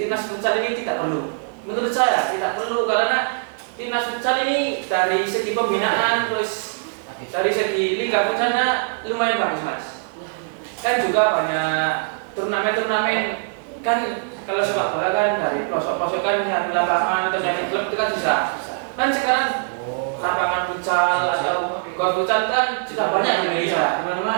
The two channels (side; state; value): left; silent; digital silence